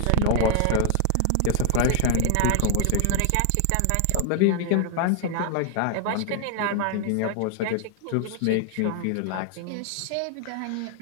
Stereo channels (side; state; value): both; different; correlation 0.00